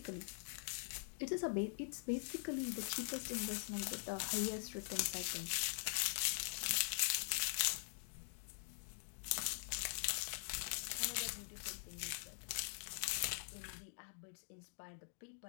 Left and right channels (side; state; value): right; silent; digital silence